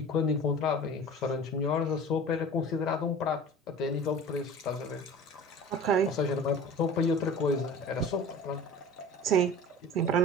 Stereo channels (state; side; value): normal; both; correlation 0.39